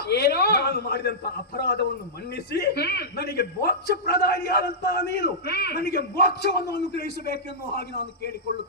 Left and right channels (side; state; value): both; normal; correlation -0.15